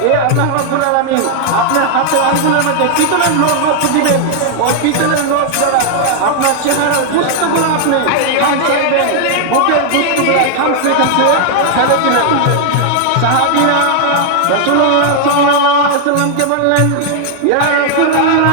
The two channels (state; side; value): different; both; correlation 0.00